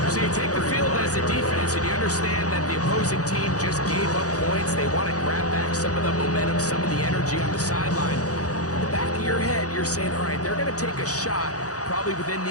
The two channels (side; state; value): right; late; 0.67 ms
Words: So you take the field as a defense, and you understand that the opposing team just gave up points. They want to grab back some of the momentum, some of the energy on the sideline. In the back of your head, you're saying, all right, they're going to take a shot probably within